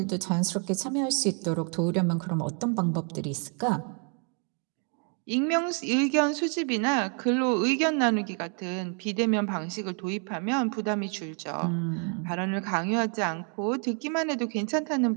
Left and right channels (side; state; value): left; quieter; 39.1 dB